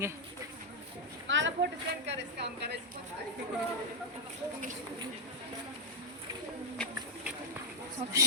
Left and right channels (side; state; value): both; normal; correlation -0.04